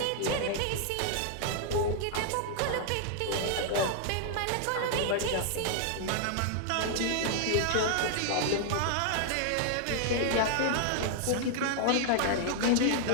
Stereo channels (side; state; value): both; different; correlation -0.01